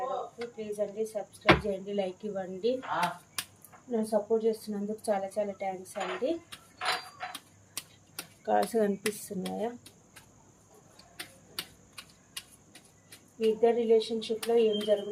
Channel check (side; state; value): both; identical; correlation 1.00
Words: please అండి subscribe చేయండి, లైక్ ఇవ్వండి. నన్ను సపోర్ట్ చేస్తున్నందుకు చాలా చాలా థ్యాంక్స్ అండి. కార్డ్స్ కనిపిస్తున్నాయా? మీ ఇద్దరు రిలేషన్షిప్లో ఏం